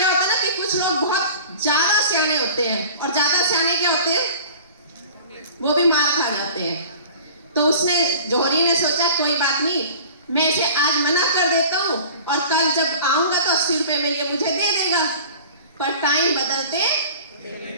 होता है ना कि कुछ लोग बहुत ज्यादा सियाने होते हैं, और ज्यादा सियाने क्या होते हैं, वो भी मार खा जाते हैं। तो उसने, जौहरी ने सोचा कोई बात नहीं, मैं इसे आज मना कर देता हूँ, और कल जब आऊंगा तो 80 रुपए में ये मुझे दे देगा। पर टाइम बदलते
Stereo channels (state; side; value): inverted; both; correlation -0.43